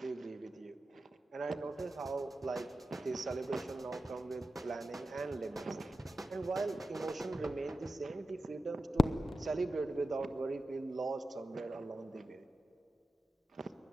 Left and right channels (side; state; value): both; normal; correlation 0.92